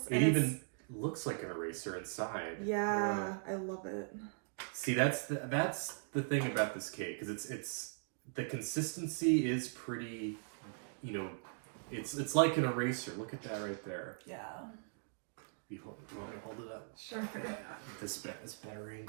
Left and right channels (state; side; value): silent; left; digital silence